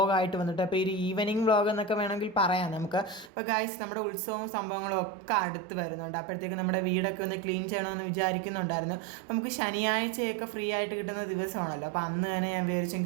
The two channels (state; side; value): drops out; left; at 3.3 s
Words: വന്നിട്ട്. അപ്പോൾ ഒരു ഈവനിങ് വ്ളോഗ് എന്നൊക്കെ വേണമെങ്കിൽ പറയാം നമുക്ക്. അപ്പോൾ ഗായ്സ് നമ്മുടെ ഉത്സവവും സംഭവങ്ങളും ഒക്കെ അടുത്ത് വരുന്നുണ്ട്. അപ്പോഴത്തേക്ക് നമ്മുടെ വീടൊക്കെ ഒന്ന് ക്ലീൻ ചെയ്യണമെന്ന് വിചാരിക്കുന്നുണ്ടായിരുന്നു. നമുക്ക് ശനിയാഴ്ചയൊക്കെ ഫ്രീ ആയിട്ട് കിട്ടുന്ന ദിവസമാണല്ലോ. അപ്പോൾ അന്ന് തന്നെ ഞാൻ